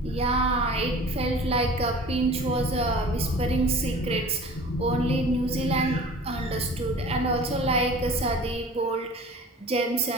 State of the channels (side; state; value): both; normal; correlation 0.43